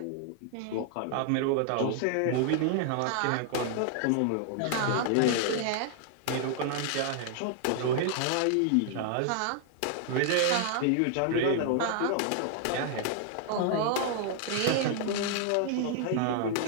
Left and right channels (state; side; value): different; both; correlation 0.00